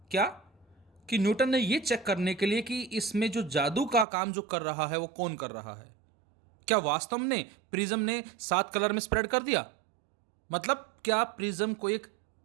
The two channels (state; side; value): drops out; left; at 4.0 s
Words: क्या कि न्यूटन ने ये चेक करने के लिए कि इसमें जो जादू का काम जो कर रहा है वो कौन कर रहा है, क्या वास्तव में प्रिज्म ने 7 कलर में स्प्रेड कर दिया, मतलब क्या प्रिज्म को एक